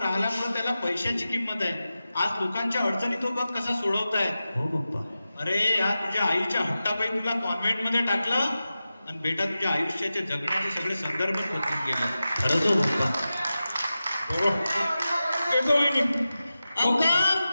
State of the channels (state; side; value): inverted; both; correlation -0.94